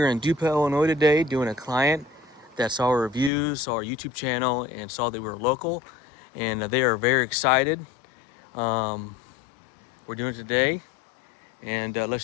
in DuPont, Illinois today doing a client that saw our reviews, saw our YouTube channel, and saw that we were local. And they are very excited. We're doing it today. And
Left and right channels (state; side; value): drops out; right; at 3.3 s